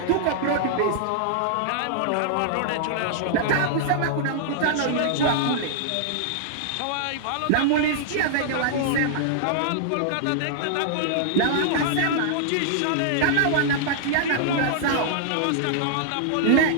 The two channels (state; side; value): different; both; correlation -0.01